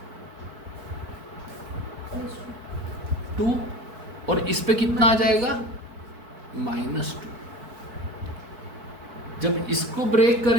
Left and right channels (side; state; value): left; late; 4.5 ms